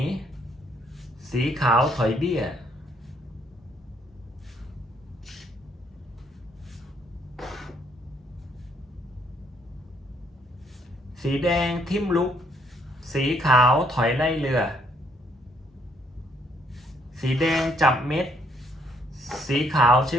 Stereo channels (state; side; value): normal; both; correlation 0.69